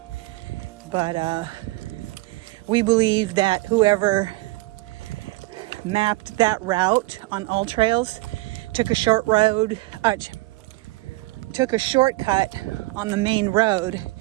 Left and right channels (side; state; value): left; quieter; 21.0 dB